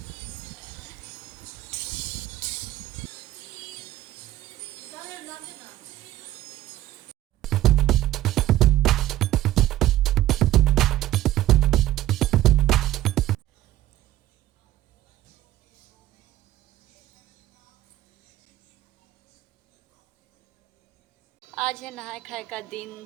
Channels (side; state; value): left; quieter; 14.4 dB